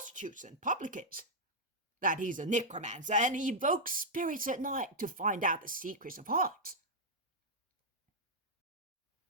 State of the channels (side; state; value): both; normal; correlation -0.04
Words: and publicans, that he's a necromancer and he evokes spirits at night to find out the secrets of hearts?"